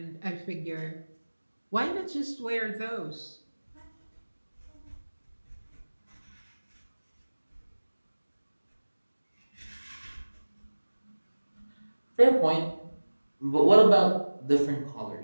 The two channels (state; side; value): inverted; both; correlation -1.00